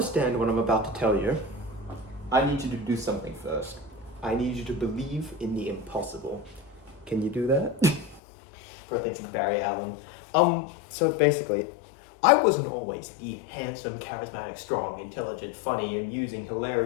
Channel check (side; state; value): right; drops out; at 8.2 s